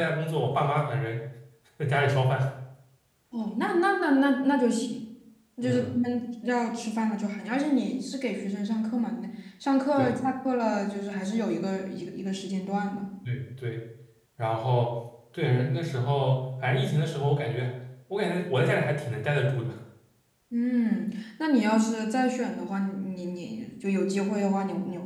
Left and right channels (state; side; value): identical; both; correlation 1.00